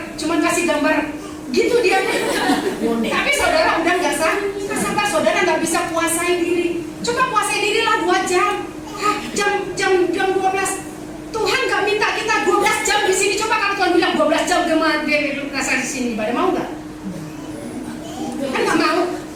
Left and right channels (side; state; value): both; identical; correlation 1.00